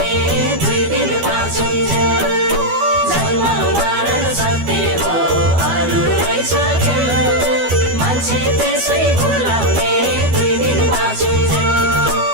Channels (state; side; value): late; left; 12 ms